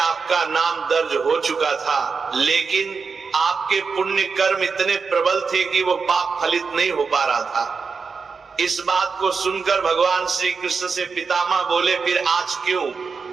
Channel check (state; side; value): quieter; left; 5.1 dB